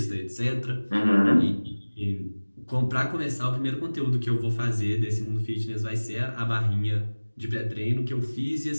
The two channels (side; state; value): both; inverted; correlation -1.00